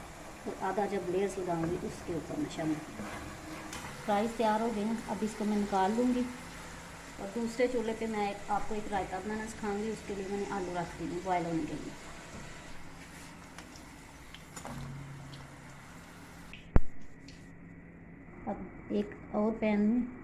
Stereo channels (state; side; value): identical; both; correlation 1.00